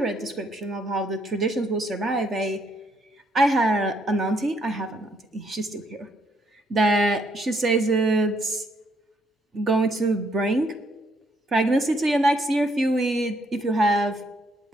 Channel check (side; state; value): both; normal; correlation 0.71